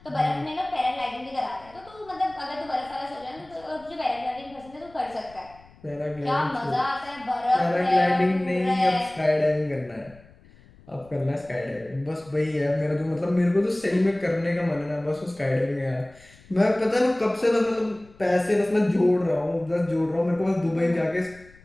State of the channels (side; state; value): left; noise; rumble, 25 dB below the sound